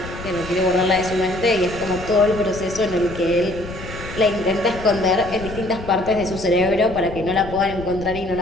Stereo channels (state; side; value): noise; left; rumble, 12 dB below the sound